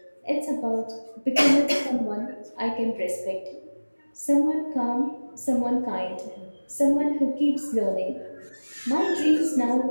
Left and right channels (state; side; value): inverted; both; correlation -1.00